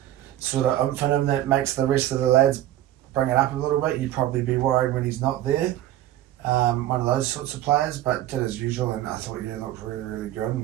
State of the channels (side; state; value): left; quieter; 13.4 dB